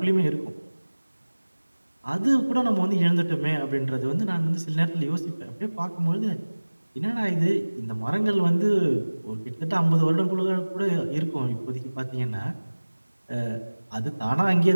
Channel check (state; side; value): inverted; both; correlation -1.00